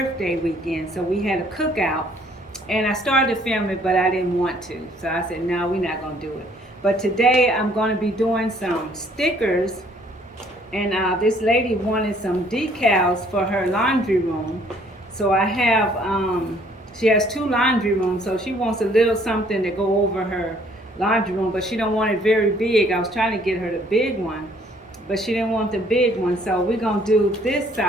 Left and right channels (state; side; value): normal; both; correlation 0.61